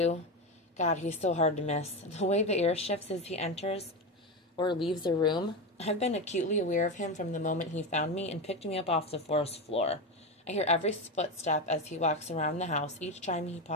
God, he's so hard to miss. The way the air shifts as he enters or leaves a room. I've been acutely aware of him from the moment he found me and picked me up off the forest floor. I hear every footstep as he walks around the house, each time he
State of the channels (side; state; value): both; normal; correlation 0.16